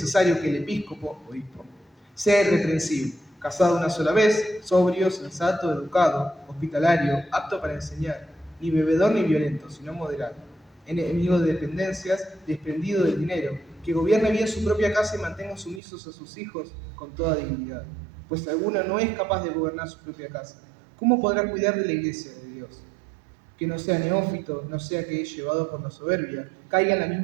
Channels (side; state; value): left; drops out; at 15.8 s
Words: que el episcopo, obispo, sea irreprensible, casado una sola vez, sobrio, sensato, educado, hospitalario, apto para enseñar, ni bebedor ni violento, sino moderado, enemigo de dependencias, desprendido del dinero, que gobierne bien su propia casa y mantenga sumisos a sus hijos con toda dignidad. Pues si alguno no es capaz de gobernar su propia casa, ¿cómo podrá cuidar de la iglesia de Dios? Que no sea neófito, no sea que es llevado por la soberbia, caiga en la